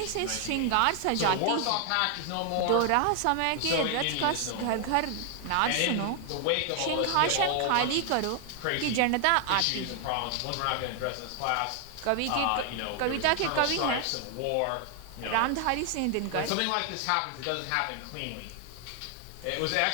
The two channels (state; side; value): different; both; correlation 0.00